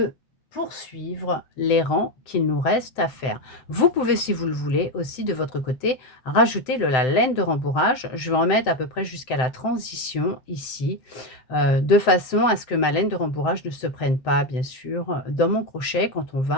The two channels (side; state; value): right; late; 7.8 ms